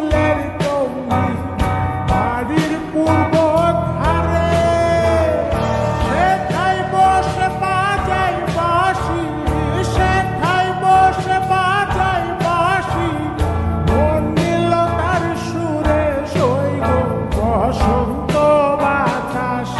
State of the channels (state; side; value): identical; both; correlation 1.00